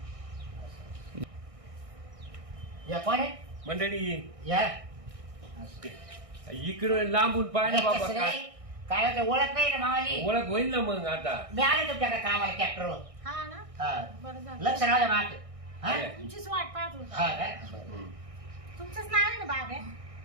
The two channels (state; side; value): late; left; 1.6 ms